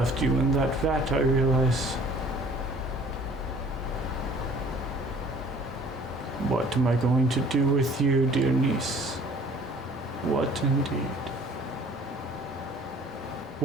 you in that vat, I realize. What am I going to do with you, dear niece? What indeed?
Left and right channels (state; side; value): normal; both; correlation 0.52